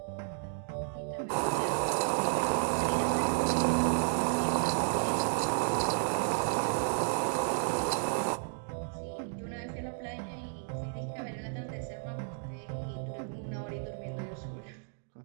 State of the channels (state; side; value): silent; left; digital silence